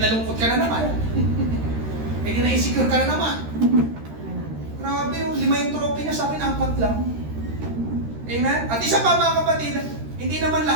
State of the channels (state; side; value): late; left; 13 ms